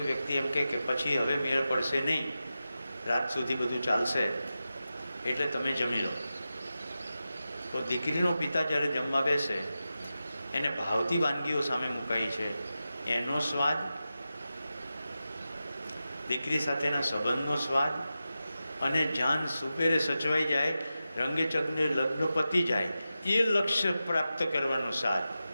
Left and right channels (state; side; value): inverted; both; correlation -0.92